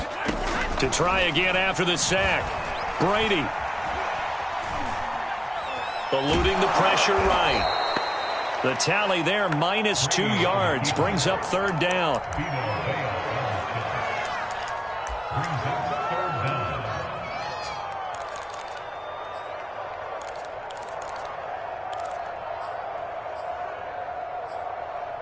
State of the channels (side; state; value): both; identical; correlation 1.00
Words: To try again after the sack. Brady. Eluding the pressure right. The tally there, -2 yards, brings up third down.